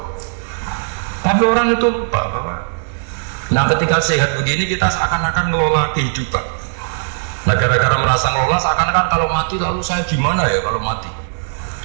Tapi orang itu lupa, Bapak. Nah, ketika sehat begini kita seakan-akan ngelola kehidupan. Nah, gara-gara merasa ngelola seakan-akan kalau mati lalu saya gimana ya kalau mati.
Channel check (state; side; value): silent; left; 66 dB below the other